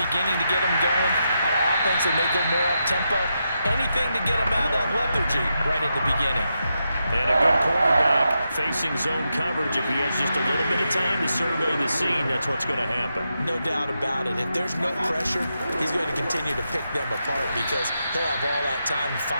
to get them going. On offense, they may go more up-tempo. Anything to get them out of that lethargy right at the beginning. And a good quarterback facing zone coverage. If he has just a little bit of time to survey the scene, that's what's going to happen. No doubt about it. If there's no pressure, he's going to continue to pick them apart because he'll have all that time to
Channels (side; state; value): both; inverted; correlation -0.86